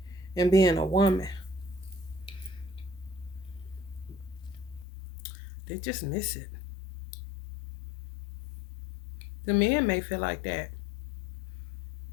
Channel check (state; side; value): drops out; right; at 4.9 s